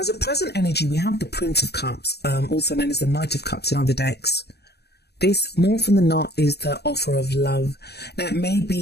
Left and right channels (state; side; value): late; right; 0.48 ms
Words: a present energy, we have the Prince of Cups, also known as the Knight of Cups in other decks. This, more often than not, is the offer of love. Now, it may